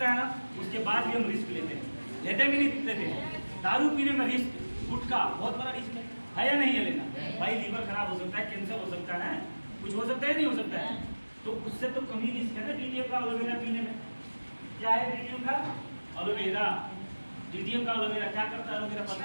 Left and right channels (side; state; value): both; inverted; correlation -1.00